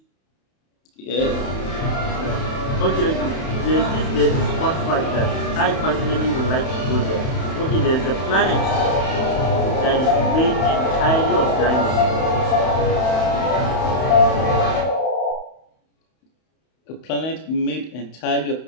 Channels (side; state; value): right; late; 31 ms